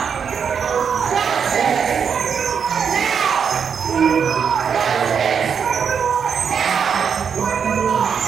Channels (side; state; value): left; quieter; 6.9 dB